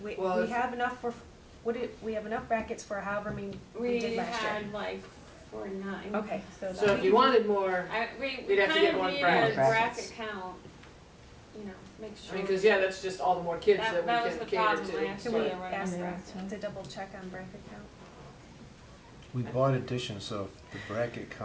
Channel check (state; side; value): identical; both; correlation 1.00